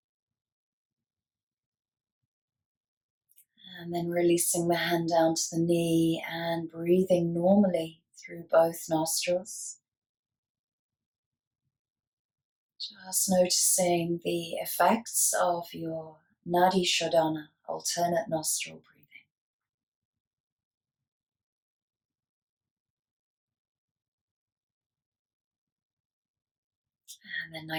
And then releasing the hand down to the knee and breathing normally through both nostrils. Just noticing the effects of your Nadi Shodhana, alternate nostril breathing. And then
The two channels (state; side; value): identical; both; correlation 1.00